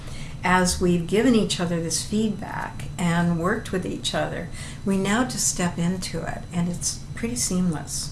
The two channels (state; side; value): identical; both; correlation 1.00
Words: as we've given each other this feedback and worked with each other, we now just step into it, and it's pretty seamless.